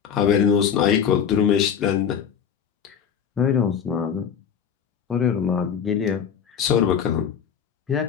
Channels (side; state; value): right; quieter; 7.6 dB